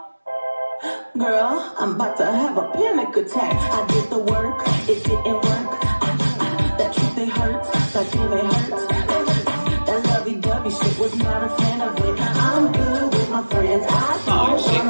Girl, I'm about to have a panic attack. I did the work, it didn't work. That truth, it hurts, that feeling it hurts. That lovey-dovey shit was not a fan of it. I'm good with my friends, I don't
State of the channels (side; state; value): both; inverted; correlation -1.00